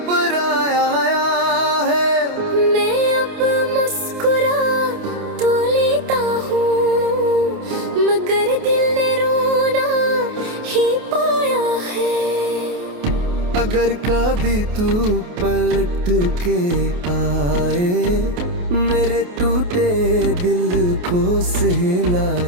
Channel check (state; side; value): late; left; 28 ms